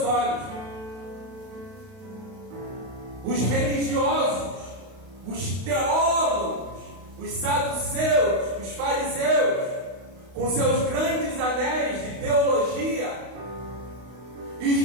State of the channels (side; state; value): left; late; 32 ms